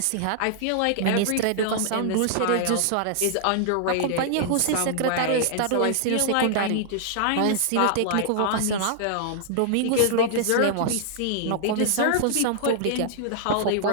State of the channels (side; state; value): both; different; correlation -0.01